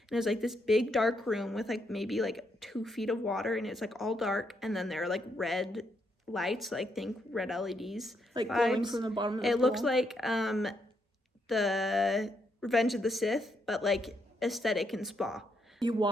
And it was like this big dark room with like maybe like 2 feet of water, and it's like all dark. And then there are like red lights, like think red LEDs. Like glowing from the bottom of the pool. It looks like the Revenge of the Sith, but like aesthetic and spa. You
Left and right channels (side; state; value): both; normal; correlation 0.78